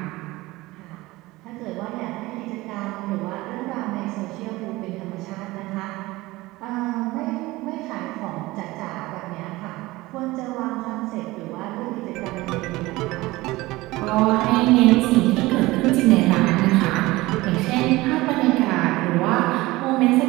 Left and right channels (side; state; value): left; quieter; 19.8 dB